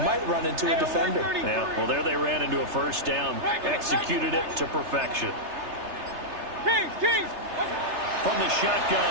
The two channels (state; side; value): late; left; 3.3 ms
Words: run into a defender. Yeah, well, there they ran into a first down, executed it to perfection. Kings! From the